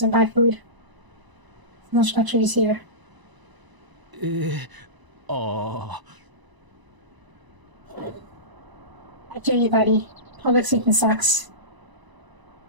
and buy food. No structures here. ああ I hear you, buddy. Public speaking sucks.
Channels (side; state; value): left; late; 1.0 ms